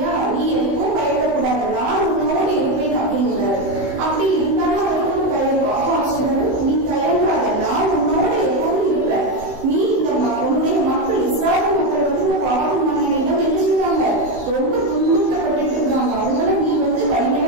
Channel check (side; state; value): left; late; 16 ms